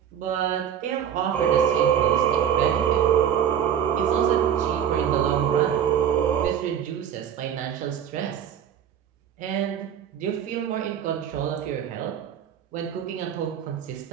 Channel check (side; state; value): left; quieter; 9.2 dB